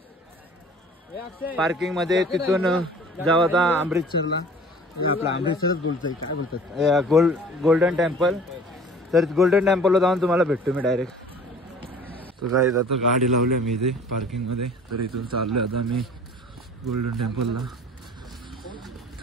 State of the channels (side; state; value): both; normal; correlation 0.47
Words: पार्किंग मध्ये, तिथून जाऊ आता अमृतसरला. आपला अमृतसरच बोलतोय, काय बोलतात, गोल्डन टेम्पल. तर गोल्डन टेम्पलला जाऊन तुम्हाला भेटतो मी डायरेक्ट. तर जायचं आता गाडी लावली मी इथे पार्किंगमध्ये, तर इथून चाललोय आता मी गोल्डन टेम्पलला.